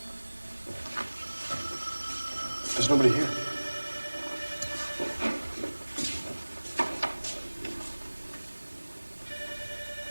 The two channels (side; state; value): both; inverted; correlation -1.00